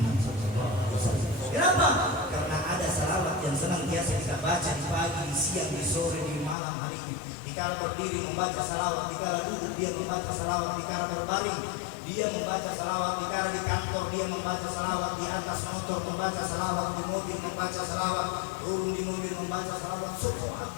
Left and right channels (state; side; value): drops out; right; at 6.6 s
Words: SAW. Kenapa? Karena ada salawat yang senantiasa kita baca di pagi, di siang, di sore, di malam hari ini. Dikala berdiri membaca salawat, dikala duduk dia membaca salawat, dikala berbaring dia membaca salawat, dikala di kantor dia membaca salawat, di atas motor membaca salawat, di mobil membaca salawat, turun di mobil membaca salawat, semua